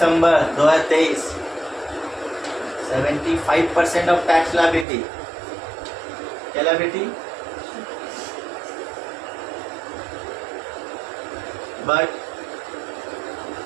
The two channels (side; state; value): left; drops out; at 4.9 s